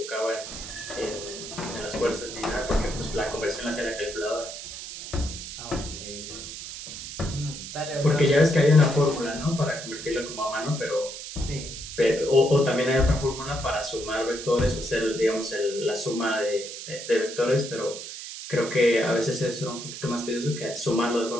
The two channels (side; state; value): right; noise; hiss, 10 dB below the sound